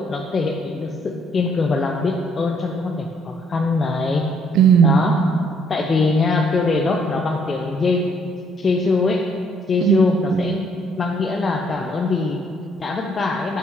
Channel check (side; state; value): both; normal; correlation 0.66